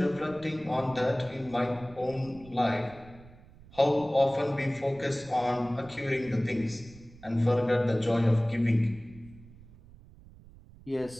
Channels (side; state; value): right; noise; rumble, 22 dB below the sound